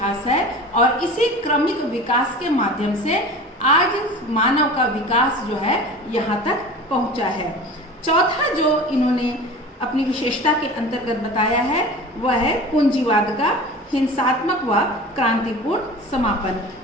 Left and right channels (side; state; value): both; normal; correlation 0.37